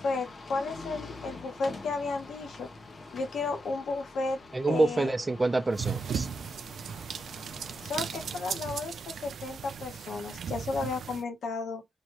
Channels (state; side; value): normal; both; correlation 0.83